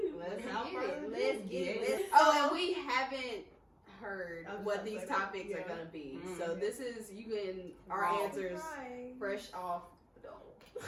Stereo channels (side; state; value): both; identical; correlation 1.00